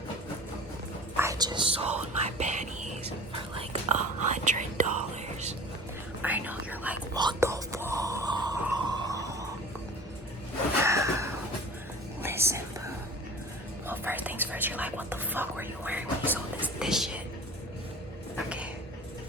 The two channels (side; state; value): both; normal; correlation 0.41